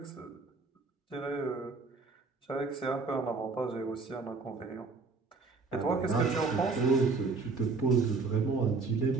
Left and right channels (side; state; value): left; quieter; 4.1 dB